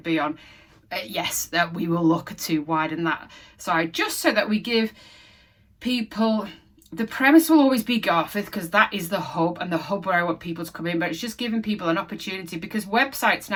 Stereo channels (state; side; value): identical; both; correlation 1.00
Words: be on. Yes, that we will look to widen that side, just so that we give people, the premise will always be Garforth, because that is the hub, and the hub where I want people to come in, but it's just giving people an opportunity, because websites